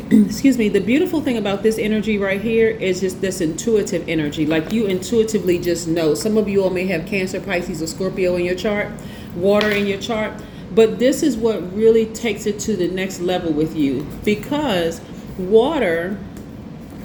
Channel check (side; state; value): both; identical; correlation 1.00